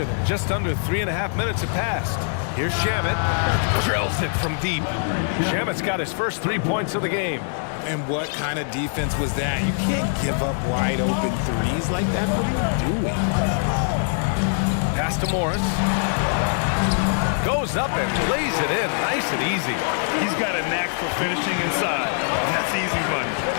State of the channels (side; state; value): right; silent; digital silence